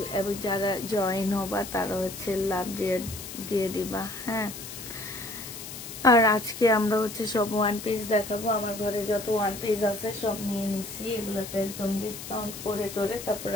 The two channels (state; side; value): noise; left; hiss, 11 dB below the sound